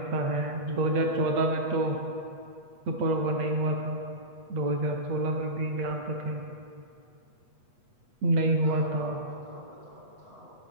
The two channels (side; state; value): left; late; 8.3 ms